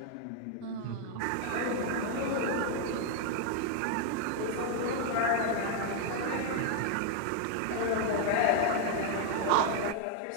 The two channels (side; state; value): both; different; correlation 0.00